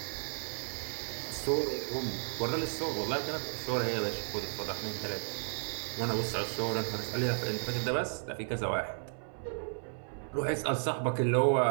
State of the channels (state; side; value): silent; left; 55 dB below the other